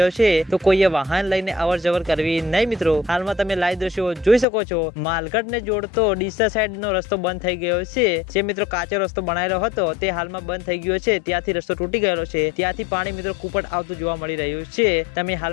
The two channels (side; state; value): right; drops out; at 4.5 s